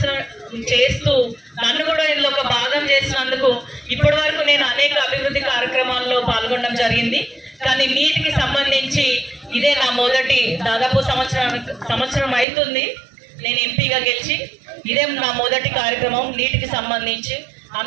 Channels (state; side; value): drops out; left; at 12.5 s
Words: చేస్తూ నన్ను కూడా ఇందులో ఒక భాగం చేసినందుకు ఇప్పటి వరకు నేను అనేక అభివృద్ధి కార్యక్రమాల్లో పాల్గొనడం జరిగింది. కానీ నీటికి సంబంధించి ఇదే నా మొదటి, దాదాపు సంవత్సరం అవుతుంది నేను ఎంపీగా గెలిచి, ఇదే నా మొదటి కార్యక్రమం నీటికి సంబంధించి.